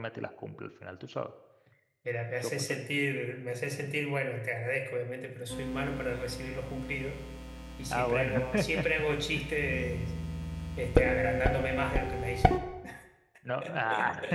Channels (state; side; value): identical; both; correlation 1.00